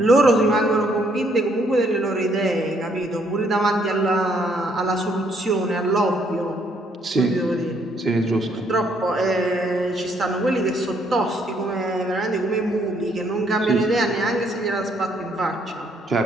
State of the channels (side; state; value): both; normal; correlation 0.69